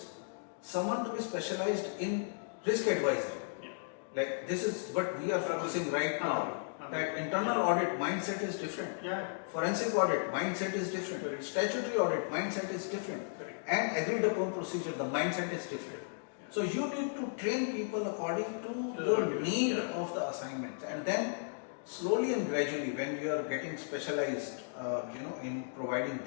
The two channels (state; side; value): silent; right; digital silence